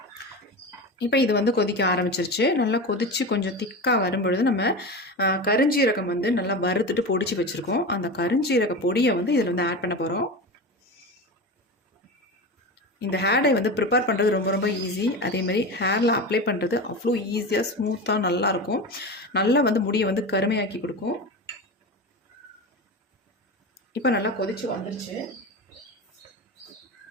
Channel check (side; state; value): both; normal; correlation 0.25